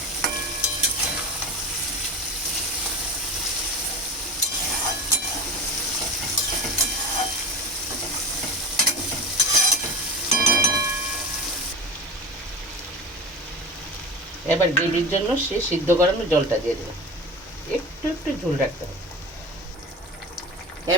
এবার গ্রেভির জন্য সে সিদ্ধ করানো জলটা দিয়ে দেবো, একটু একটু ঝোল রাখতে হবে।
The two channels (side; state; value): both; normal; correlation 0.30